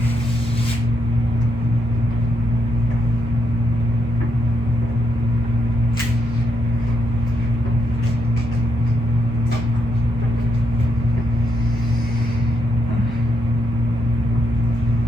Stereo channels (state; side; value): normal; both; correlation 0.80